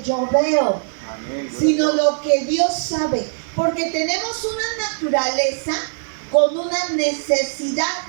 yo veo, sino lo que Dios sabe, porque tenemos una naturaleza con una necesidad,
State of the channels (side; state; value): left; silent; digital silence